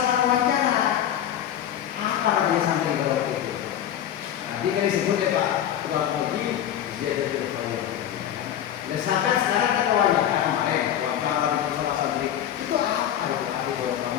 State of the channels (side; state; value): right; quieter; 10.6 dB